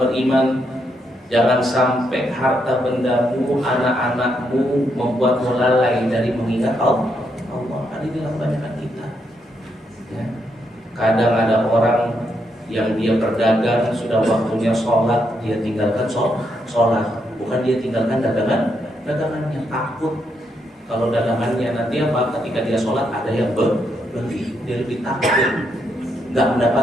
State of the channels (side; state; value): both; normal; correlation 0.79